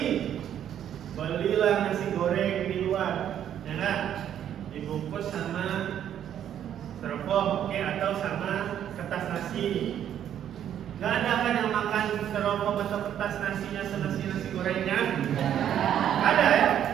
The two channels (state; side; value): quieter; left; 10.1 dB